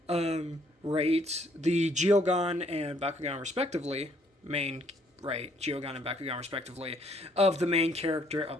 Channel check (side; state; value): both; normal; correlation 0.67